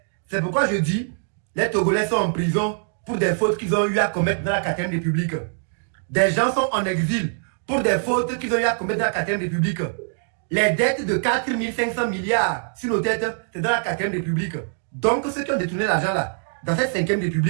C'est pourquoi je dis, les Togolais sont en prison pour des fautes qu'ils ont eu à commettre dans la 4e République. Des gens sont en exil pour des fautes qu'ils ont eu à commettre dans la 4e République. Les dettes de 4 500 milliards sur nos têtes, c'est dans la 4e République. Donc ceux qui ont détourné l'argent là, dans cette 5e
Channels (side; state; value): left; silent; digital silence